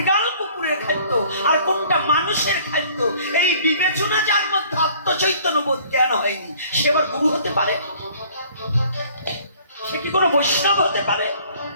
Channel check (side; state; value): both; inverted; correlation -0.54